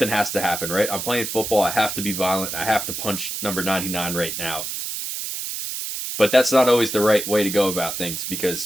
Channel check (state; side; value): noise; right; hiss, 5 dB below the sound